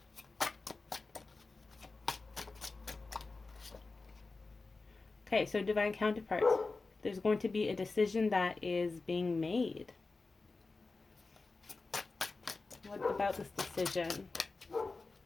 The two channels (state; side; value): quieter; right; 3.8 dB